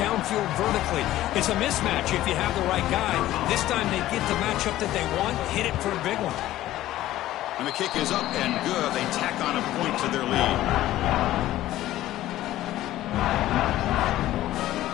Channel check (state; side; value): quieter; right; 14.7 dB